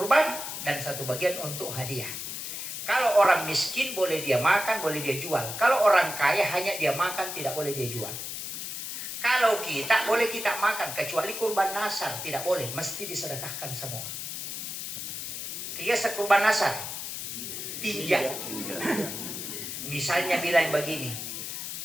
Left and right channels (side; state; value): left; noise; hiss, 6 dB below the sound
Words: dan satu bagian untuk hadiah. Kalau orang miskin boleh dia makan, boleh dia jual. Kalau orang kaya hanya dia makan, tidak boleh dia jual. Kalau kita boleh kita makan, kecuali kurban nasar tidak boleh, mesti disedekahkan semua. Kias kurban nasar, tinja. Misalnya bilang begini,